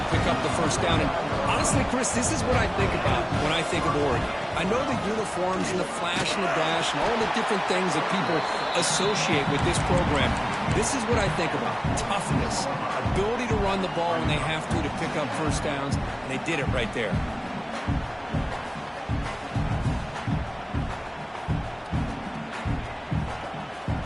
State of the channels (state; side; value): identical; both; correlation 1.00